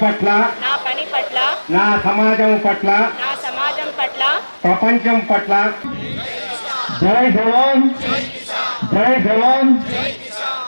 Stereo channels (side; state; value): both; inverted; correlation -1.00